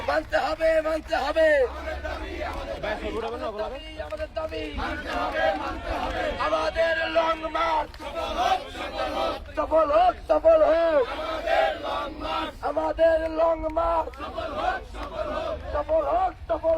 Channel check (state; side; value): identical; both; correlation 1.00